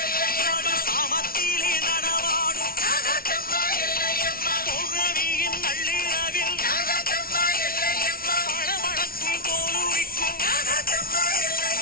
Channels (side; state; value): right; late; 0.43 ms